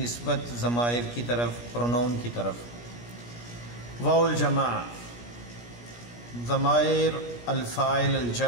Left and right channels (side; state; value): right; late; 17 ms